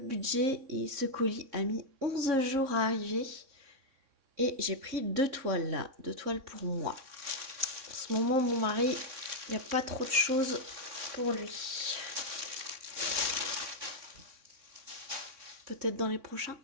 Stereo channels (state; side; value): late; left; 3.6 ms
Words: et ce colis a mis 11 jours à arriver. Et j'ai pris 2 toiles là, 2 toiles pour moi. En ce moment, mon mari, il n'y a pas trop de choses pour lui. Peut-être dans les prochains.